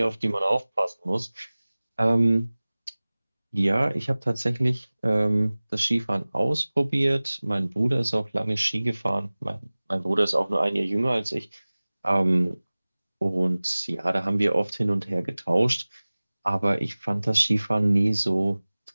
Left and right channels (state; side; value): inverted; both; correlation -0.99